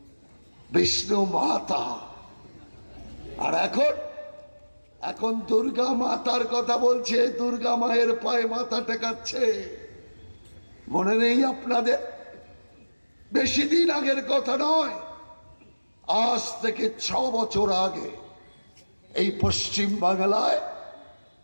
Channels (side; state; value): both; inverted; correlation -1.00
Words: বিষ্ণু মাতা। আর এখন দুর্গা মাতার কথা বলছে, দুর্গা মায়ের পায়ে মাথা টেকাচ্ছে। মনে নেই আপনাদের? বেশি দিন আগের কথা নয়, আজ থেকে 6 বছর আগে এই পশ্চিম বাংলায়